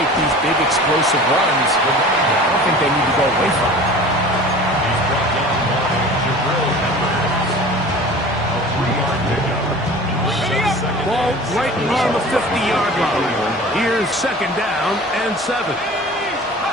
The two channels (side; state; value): both; normal; correlation 0.40